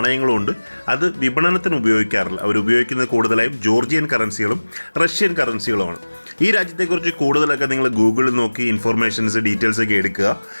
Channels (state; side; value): inverted; both; correlation -1.00